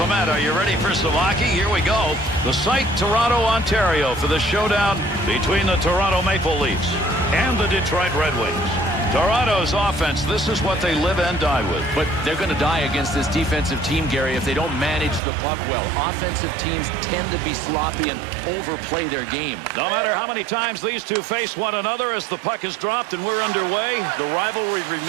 Are you ready for some hockey? Here we go. The site, Toronto, Ontario, for the showdown between the Toronto Maple Leafs and the Detroit Red Wings. Toronto's offense, this is what they live and die with. But they're going to die against this defensive team, Gary, if they don't manage the puck well. Offensive teams tend to be sloppy and overplay their game. No matter how many times these two face one another as the puck is dropped and we're underway, the rivalry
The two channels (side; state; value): left; drops out; at 15.2 s